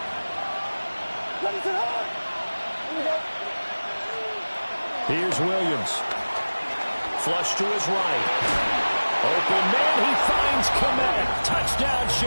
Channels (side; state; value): both; inverted; correlation -1.00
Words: Here's Williams. Flush to his right. Open man, he finds Komet. Touchdown,